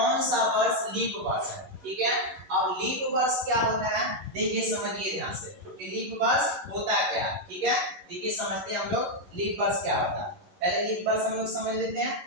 सा वर्ष लीप वर्ष है। ठीक है, अब लीप वर्ष क्या होता है? देखिए समझिए ध्यान से कि लीप वर्ष होता क्या है। ठीक है, देखिए समझते हैं हम लोग लीप वर्ष क्या होता है। पहले लीप वर्ष हम लोग समझ लेते हैं,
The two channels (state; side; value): late; left; 11 ms